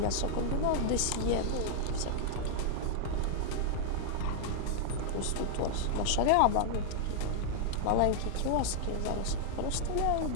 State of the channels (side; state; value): both; different; correlation -0.01